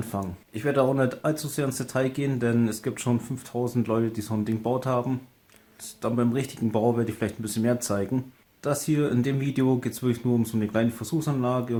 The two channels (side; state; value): both; identical; correlation 1.00